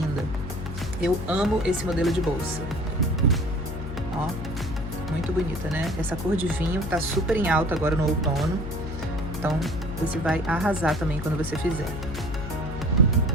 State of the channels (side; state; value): left; noise; hum, 7 dB below the sound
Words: Eu amo esse modelo de bolsa. Ó, muito bonita, né? Essa cor de vinho tá super em alta agora no outono. Então, você vai arrasar também quando você fizer.